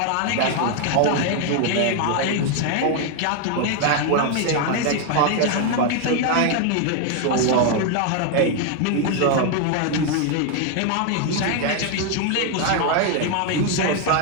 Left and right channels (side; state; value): both; different; correlation 0.01